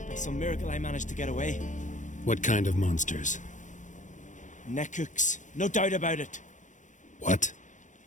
By some miracle I managed to get away. What kind of monsters? Nekooks, no doubt about it. What?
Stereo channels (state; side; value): late; right; 0.36 ms